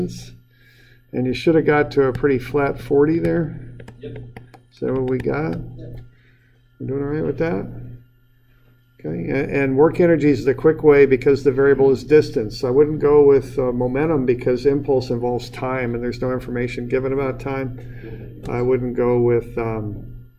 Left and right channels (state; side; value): identical; both; correlation 1.00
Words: and you should have got to a pretty flat 40 there. Yep. Is that what we got? We're doing all right with that? Okay, and work energy is the quick way because the variable is distance. I wouldn't go with momentum because impulse involves time and there's no information given about time. I wouldn't go with